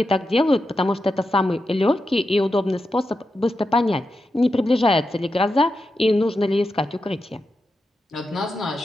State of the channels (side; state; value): both; normal; correlation 0.88